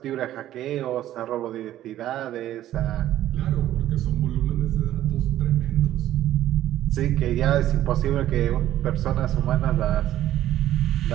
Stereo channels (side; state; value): left; quieter; 13.0 dB